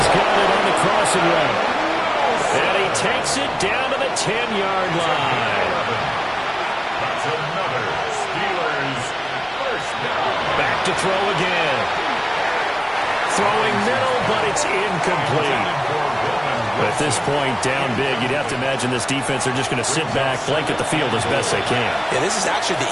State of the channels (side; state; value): both; identical; correlation 1.00